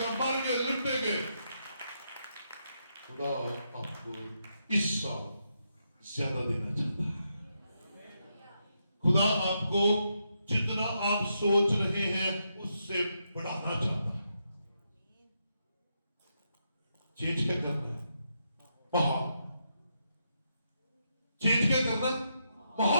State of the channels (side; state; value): both; inverted; correlation -0.82